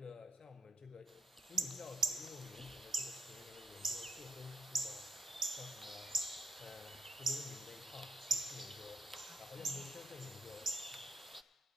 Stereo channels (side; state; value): both; normal; correlation 0.77